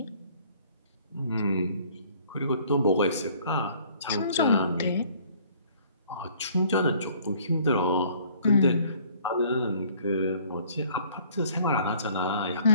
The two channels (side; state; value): both; inverted; correlation -0.57